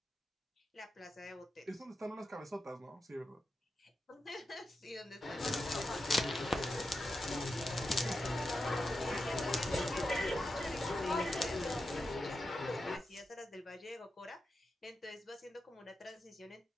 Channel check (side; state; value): both; normal; correlation 0.88